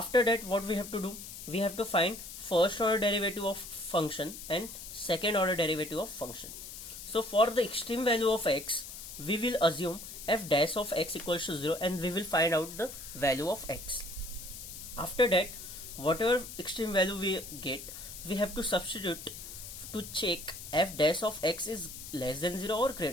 that what we have to do, we have to find first order derivative of function and second order derivative of function. So for the extreme value of x, we will assume f dash of x equals to 0 and we will find out the value of x. After that, whatever extreme value we get, we have to substitute to check f dash of x is less than 0 or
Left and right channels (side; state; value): left; noise; hiss, 11 dB below the sound